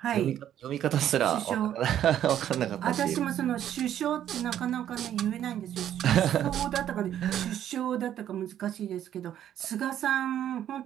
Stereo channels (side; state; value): left; quieter; 10.8 dB